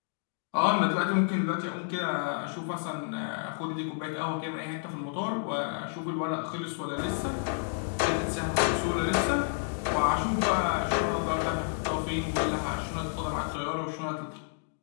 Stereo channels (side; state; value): right; silent; digital silence